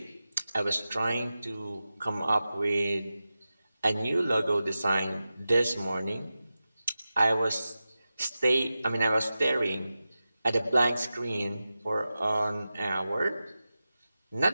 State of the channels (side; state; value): both; inverted; correlation -0.93